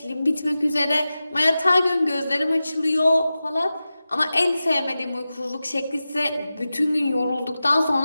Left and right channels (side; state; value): both; inverted; correlation -0.95